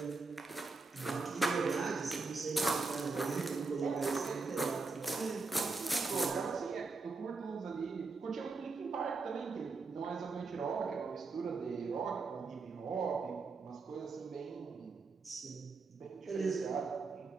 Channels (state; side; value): quieter; left; 4.1 dB